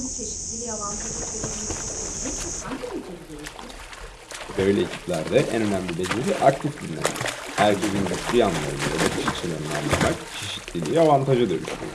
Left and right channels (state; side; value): identical; both; correlation 1.00